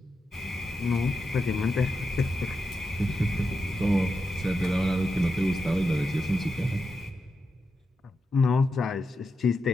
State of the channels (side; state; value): both; normal; correlation 0.87